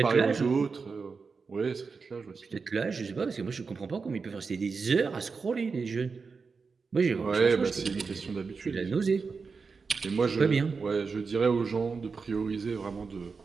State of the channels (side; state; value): left; quieter; 4.9 dB